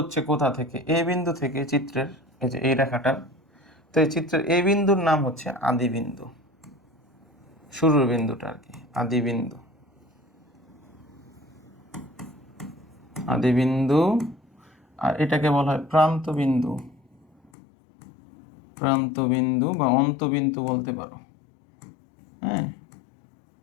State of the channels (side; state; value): right; drops out; at 17.5 s